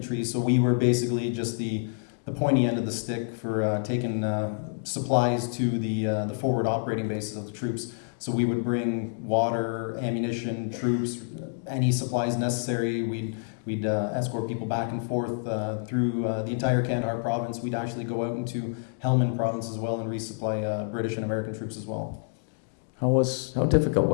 so we were basically just the pointy end of the stick for taking supplies to the forward operating bases of the troops. So we would bring water, ammunition, troops, any supplies necessary. We'd escort people back and forth through the entire Kandahar province. We'd actually go out into Helmand province as well and resupply British and American troops as well. How difficult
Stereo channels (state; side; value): silent; right; digital silence